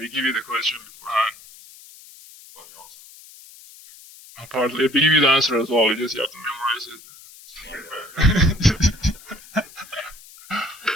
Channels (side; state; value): left; noise; hiss, 21 dB below the sound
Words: give you the question beforehand. Partly, we give you the answer as well. You just have to memorize it.